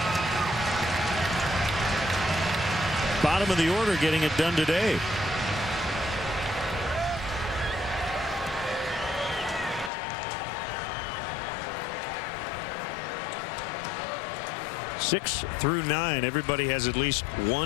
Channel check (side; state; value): right; drops out; at 9.9 s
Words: Bottom of the order getting it done today. Six through 9, everybody has at least